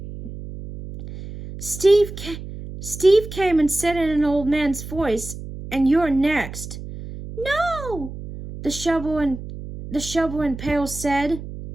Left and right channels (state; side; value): noise; right; hum, 11 dB below the sound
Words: Steve came and said in an old man's voice, "And you're next." "No!" the shovel and Pail said.